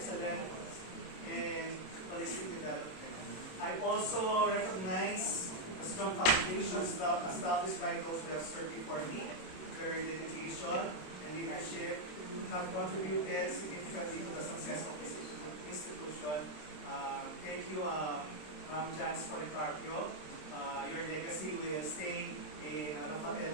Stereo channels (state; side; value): late; right; 27 ms